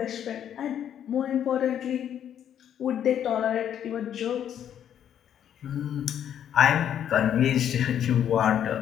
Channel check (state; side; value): quieter; right; 9.7 dB